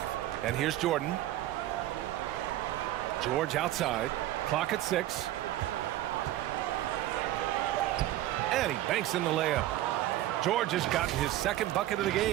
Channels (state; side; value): quieter; left; 14.3 dB